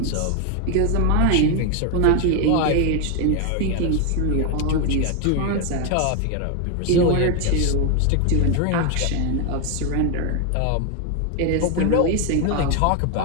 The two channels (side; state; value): both; different; correlation 0.01